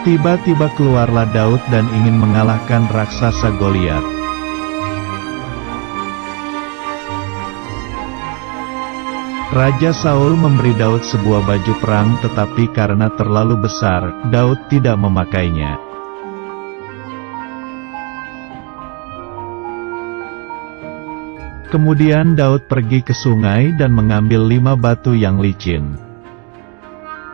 Tiba-tiba keluarlah Daud dan ingin mengalahkan raksasa Goliat. Raja Saul memberi Daud sebuah baju perang, tetapi karena terlalu besar, Daud tidak memakainya. Kemudian Daud pergi ke sungai dan mengambil 5 batu yang licin.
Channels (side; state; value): left; quieter; 34.9 dB